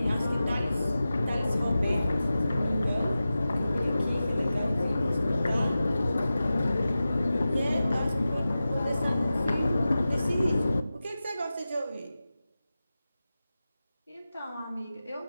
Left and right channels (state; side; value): inverted; both; correlation -0.94